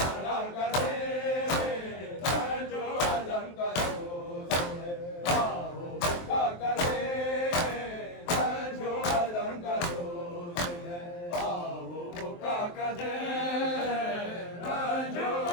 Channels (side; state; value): right; late; 23 ms